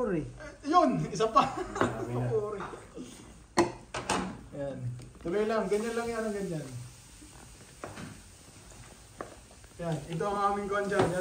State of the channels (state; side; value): identical; both; correlation 1.00